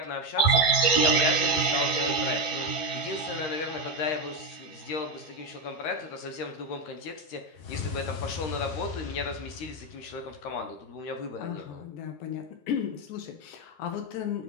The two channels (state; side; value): late; right; 12 ms